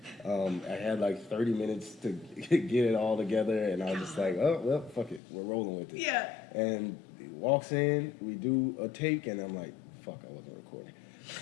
I had like 30 minutes to get it all together, and I was just like, oh well, fuck it, we're rolling with it. Yeah. And walks in, we do a take, and I'm like, fuck, I wasn't recording.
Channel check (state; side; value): drops out; right; at 5.2 s